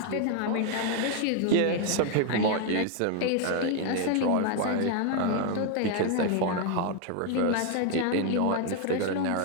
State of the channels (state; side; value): different; both; correlation 0.00